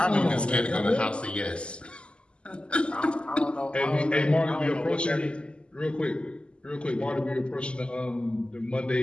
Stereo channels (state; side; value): late; right; 0.052 ms